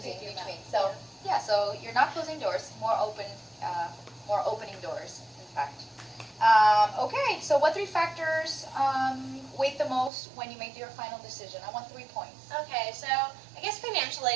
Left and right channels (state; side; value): drops out; left; at 10.1 s